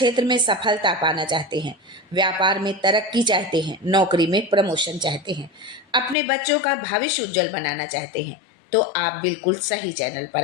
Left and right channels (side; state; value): right; drops out; at 6.2 s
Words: में सफलता पाना चाहते हैं, व्यापार में तरक्की चाहते हैं, नौकरी में प्रमोशन चाहते हैं, अपने बच्चों का भविष्य उज्जवल बनाना चाहते हैं, तो आप बिल्कुल सही चैनल पर